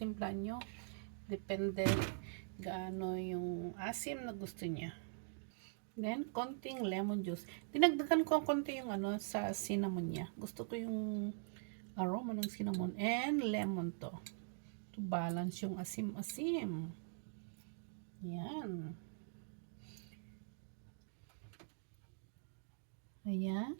nyo. Depende gaano yung asim na gusto niya. Then, konting lemon juice. Dinagdagan ko konti yung ano sa cinnamon niya. Gusto ko yung aroma ng cinnamon and lemon to. To balance yung asim-asim. Yan. Ayan.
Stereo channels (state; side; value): silent; left; digital silence